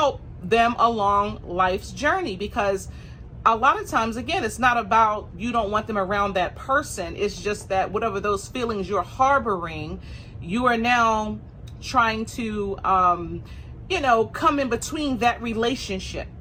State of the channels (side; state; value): both; identical; correlation 1.00